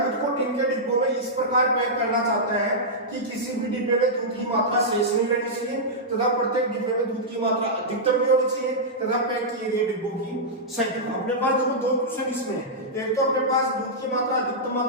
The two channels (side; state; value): both; normal; correlation -0.10